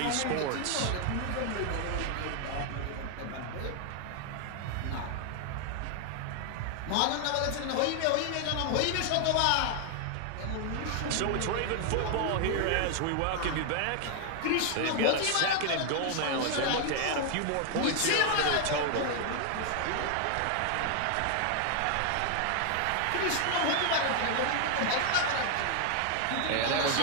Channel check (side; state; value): both; different; correlation 0.00